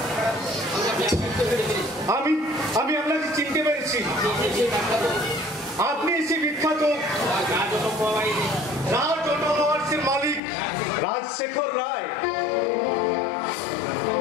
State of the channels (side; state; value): right; drops out; at 10.4 s